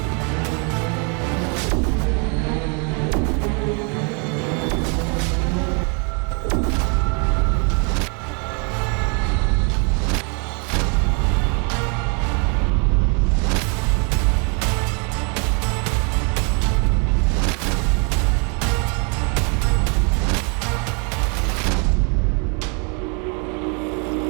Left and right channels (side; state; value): left; quieter; 35.9 dB